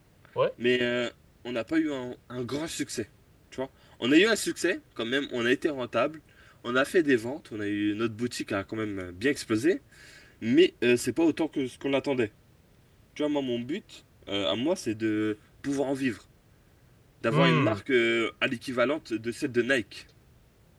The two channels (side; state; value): both; identical; correlation 1.00